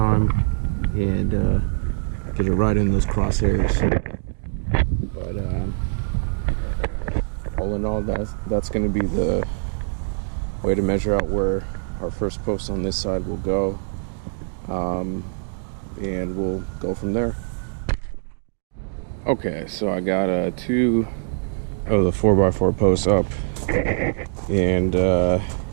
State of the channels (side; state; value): left; silent; digital silence